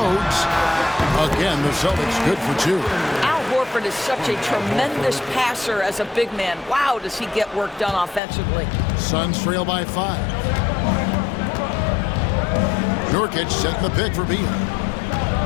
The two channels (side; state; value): right; drops out; at 8.2 s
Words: Again, the Celtics good for 2. Al Horford is such a tremendous passer as a big man. Wow, does he get work done offensively. Suns trail by 5. Nurkic setting the pick for Beal.